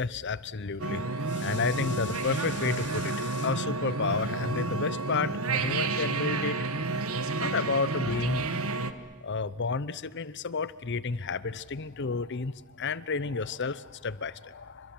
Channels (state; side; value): normal; both; correlation 0.07